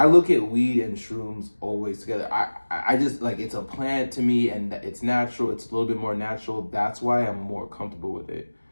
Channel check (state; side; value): inverted; both; correlation -1.00